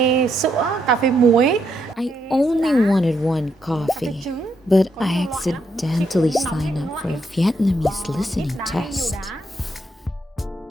sữa, cà phê muối. I only wanted one coffee, but I accidentally signed up for a Vietnamese listening test.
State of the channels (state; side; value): normal; both; correlation 0.77